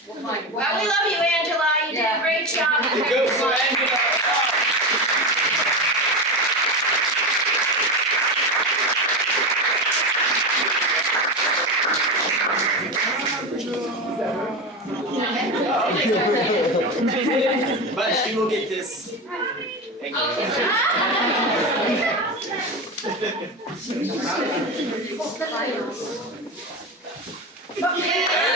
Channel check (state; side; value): normal; both; correlation 0.19